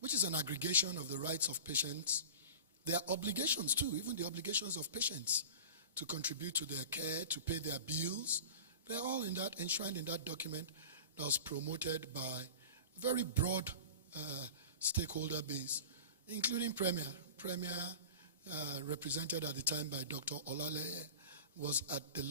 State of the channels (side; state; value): both; inverted; correlation -0.35